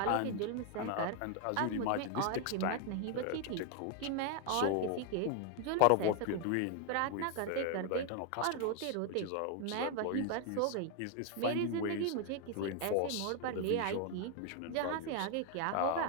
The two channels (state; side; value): different; both; correlation 0.00